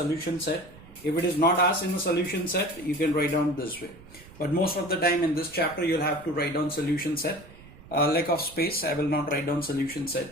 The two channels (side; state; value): right; noise; rumble, 21 dB below the sound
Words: set. If it is not asked in the solution set, you can write down this way. But most of the time in this chapter, you'll have to write down solution set. Lack of space, I will not write down solution